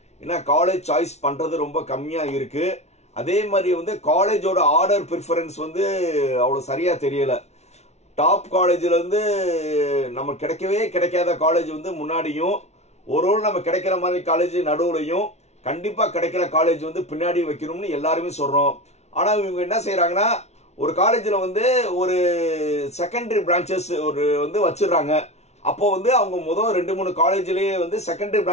ஏன்னா காலேஜ் சாய்ஸ் பண்றது ரொம்ப கம்மியா இருக்கு. அதே மாதிரி வந்து காலேஜோட ஆர்டர் ப்ரிஃபரன்ஸ் வந்து அவ்வளோ சரியா தெரியல. டாப் காலேஜ்ல இருந்து நம்ம கிடைக்கவே கிடைக்காத காலேஜ் வந்து முன்னாடியும், ஒரு நம்ம கிடைக்கிற மாதிரி காலேஜ் நடுவுலையும், கண்டிப்பா கிடைக்கிற காலேஜ் வந்து பின்னாடி வைக்கணும்னு எல்லாருமே சொல்றோம். ஆனா இவங்க என்ன செய்யறாங்கன்னா, ஒரு காலேஜ்ல வந்து ஒரு செகண்டரி பிரான்ச்சஸ் ஒரு வந்து வச்சிடறாங்க. அப்போ வந்து அவங்க முதல் 2-3 காலேஜ்லயே வந்து செகண்டரி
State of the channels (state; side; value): late; right; 0.32 ms